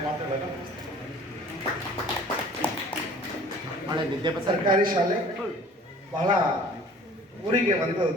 ಮಾತುಗಳನ್ನು ಮುಗಿಸ್ತೇನೆ. ಸರ್ಕಾರಿ ಶಾಲೆ ಬಹಳ ಊರಿಗೆ ಒಂದು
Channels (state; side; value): normal; both; correlation 0.49